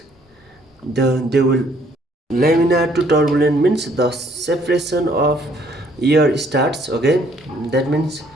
laminar to turbulent means the separation of air starts, okay. That means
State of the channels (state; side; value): normal; both; correlation 0.64